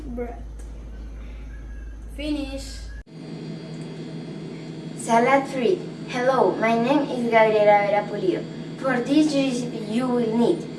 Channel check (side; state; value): both; identical; correlation 1.00